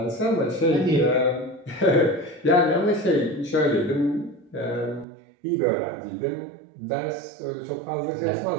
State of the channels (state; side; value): drops out; left; at 5.1 s